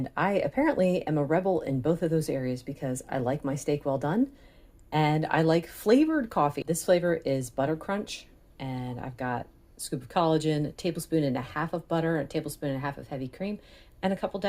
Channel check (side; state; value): both; identical; correlation 1.00